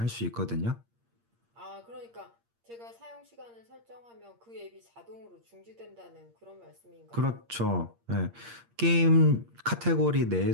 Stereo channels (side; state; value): left; late; 8.6 ms